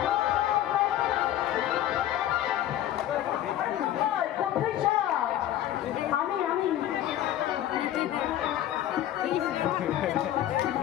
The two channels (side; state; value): right; quieter; 12.3 dB